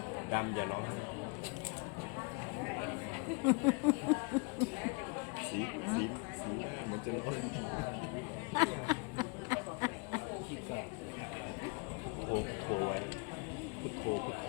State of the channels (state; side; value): quieter; right; 31.0 dB